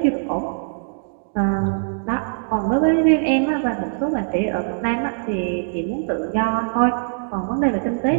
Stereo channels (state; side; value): silent; left; digital silence